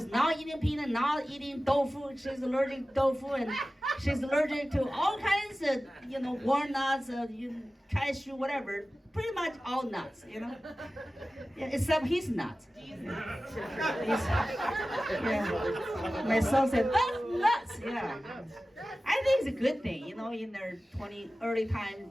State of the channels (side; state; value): both; normal; correlation 0.96